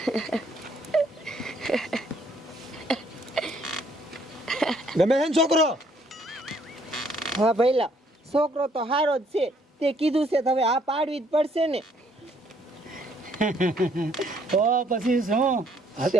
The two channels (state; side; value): normal; both; correlation 0.66